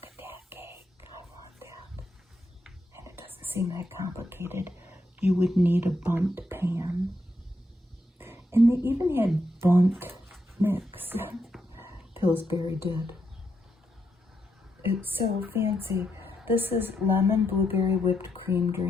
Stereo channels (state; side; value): normal; both; correlation 0.81